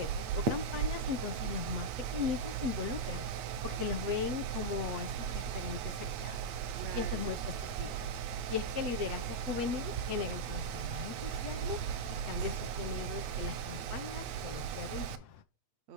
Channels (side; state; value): left; late; 8.4 ms